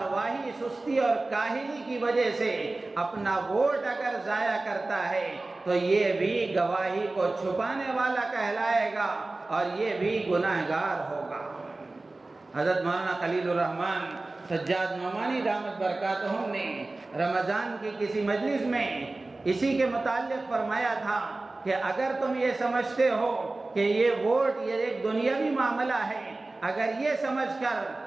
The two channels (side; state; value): left; quieter; 3.1 dB